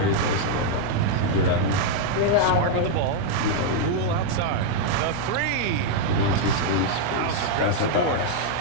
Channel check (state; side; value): different; both; correlation 0.00